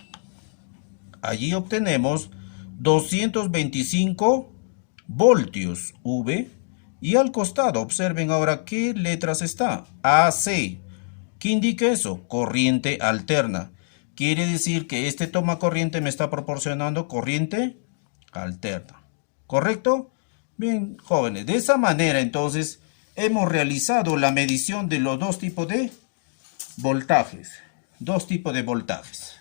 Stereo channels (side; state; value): right; silent; digital silence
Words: Allí obtenemos 225 voltios V. Y al costado, observen ahora qué letras está. AC. ¿Qué indica eso? Corriente alterna. Quiere decir que este toma corriente me está proporcionando corriente alterna. ¿Correcto? Bien, jóvenes, de esa manera entonces hemos realizado la medición de los dos tipos de voltajes. Dos tipos de voltajes.